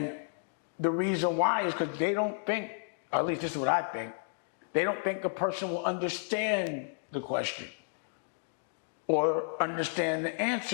the reason why is because they don't think, or at least this is what I think, they don't think a person will understand the question or understand the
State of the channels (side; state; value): right; silent; digital silence